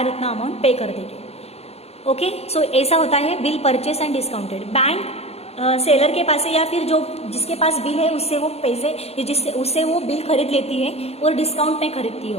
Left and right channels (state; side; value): late; right; 0.30 ms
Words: उतना अमाउंट पे कर देगी। ओके, सो ऐसा होता है bill purchase and discounted. Bank seller के पास है या फिर जो जिसके पास बिल है उससे वो पैसे उससे वो बिल खरीद लेती है और डिस्काउंट में खरीदती है